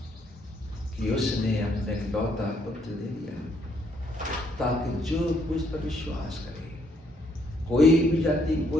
कि उसने अपने इकलौता पुत्र दे दिया, ताकि जो कुछ पर विश्वास करे, कोई भी जाति,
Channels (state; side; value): normal; both; correlation 0.70